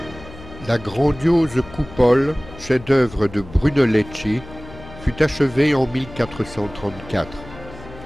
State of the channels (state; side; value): noise; left; hum, 17 dB below the sound